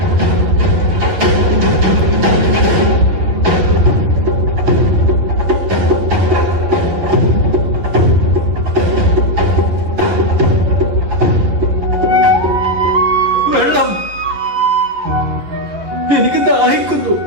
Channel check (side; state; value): left; late; 11 ms